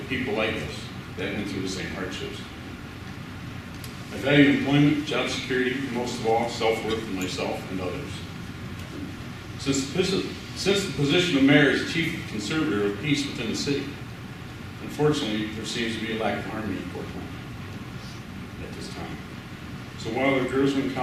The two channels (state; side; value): identical; both; correlation 1.00